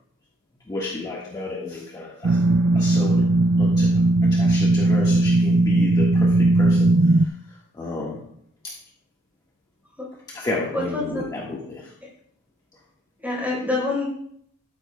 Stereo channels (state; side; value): normal; both; correlation 0.74